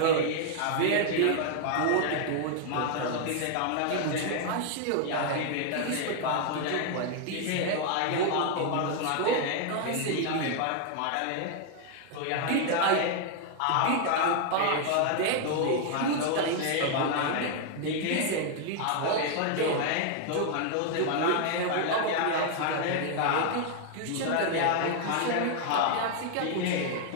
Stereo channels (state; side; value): different; both; correlation 0.00